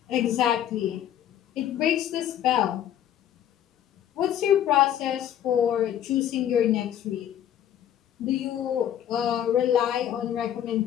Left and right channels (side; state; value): right; quieter; 10.6 dB